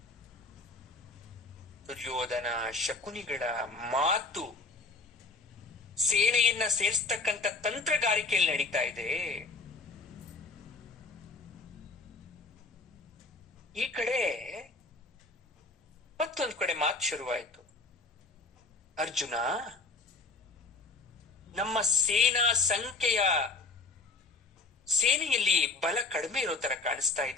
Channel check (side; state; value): right; quieter; 3.5 dB